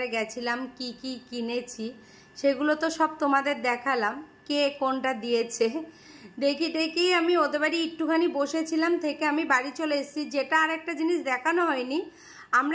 গেছিলাম, কি কি কিনেছি সেগুলো তো সব তোমাদের দেখালাম। কে কোনটা দিয়েছে দেখি আমি ওদের বাড়ি একটুখানি বসেছিলাম, থেকে আমি বাড়ি চলে এসেছি। যেটা আর একটা জিনিস দেখানো হয়নি,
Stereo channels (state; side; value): identical; both; correlation 1.00